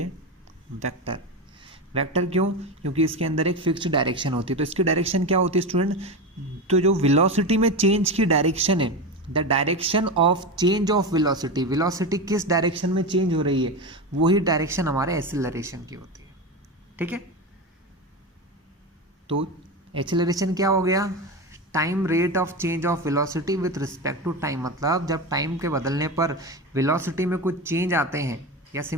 वेक्टर। वेक्टर क्यों, क्योंकि इसके अंदर एक फिक्स्ड डायरेक्शन होती है। तो इसकी डायरेक्शन क्या होती है स्टूडेंट, तो जो वेलोसिटी में चेंज की डायरेक्शन है, the direction of change of velocity, velocity किस डायरेक्शन में चेंज हो रही है वही डायरेक्शन हमारे एक्सेलरेशन की होती है। ठीक है, तो एक्सेलरेशन क्या हो गया, time rate of change of velocity with respect to time, मतलब जब टाइम के बदलने पर वेलोसिटी में कुछ चेंज आते हैं, या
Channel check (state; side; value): normal; both; correlation 0.20